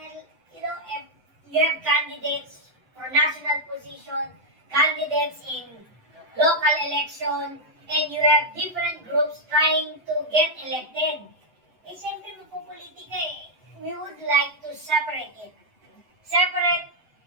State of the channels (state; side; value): late; left; 7.9 ms